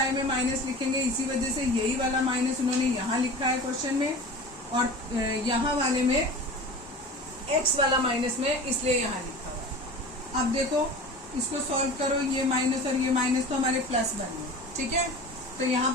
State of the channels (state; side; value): normal; both; correlation 0.36